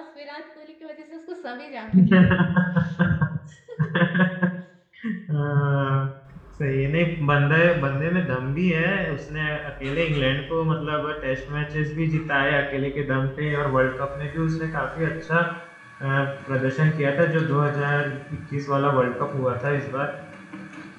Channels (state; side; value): identical; both; correlation 1.00